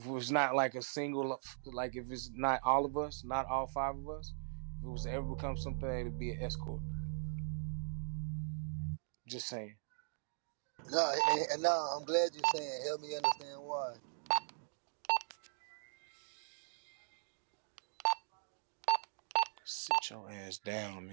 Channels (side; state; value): left; silent; digital silence